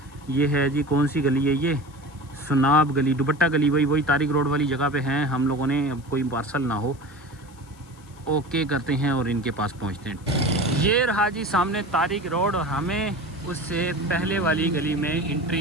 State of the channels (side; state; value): left; noise; hiss, 28 dB below the sound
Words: ये है जी, कौन सी गली है ये, सुनाब गली, दुपट्टा गली, वही तारिक रोड वाली जगह पे हैं हम लोगों ने। अब कोई पार्सल ना हो, ओके करते हैं और इनके पास पहुंचते हैं। ये रहा जी सामने तारिक रोड और हमें उससे पहले वाली गली में